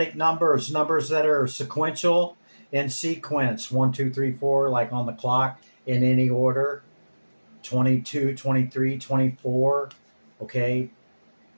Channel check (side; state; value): both; inverted; correlation -1.00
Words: numbers that are sequential in sequence. 1, 2, 3, 4, like on the clock in any order. 22, 23, 24. Okay.